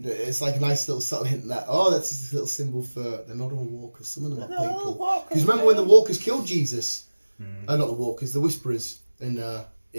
It's like a nice little subtle hint that that's just a little symbol for they're not all walkers. Some of them are people. Because remember when the walkers killed Jesus? Not the walkers, the Whisperers, and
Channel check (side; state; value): both; inverted; correlation -1.00